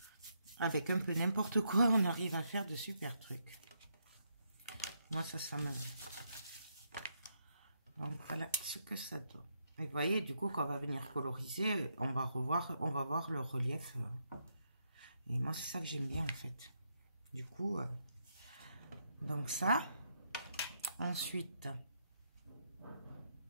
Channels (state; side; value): inverted; both; correlation -0.78